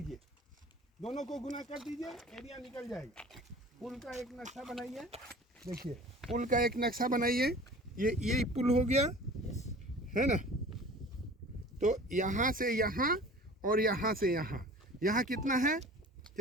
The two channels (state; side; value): normal; both; correlation 0.43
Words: दोनों को गुना कर दीजिए, एरिया निकल जाएगा। पुल का एक नक्शा बनाइए, देखिए पुल का एक नक्शा बनाइए। ये पुल हो गया है ना? तो यहाँ से यहाँ और यहाँ से यहाँ, यहाँ कितना है,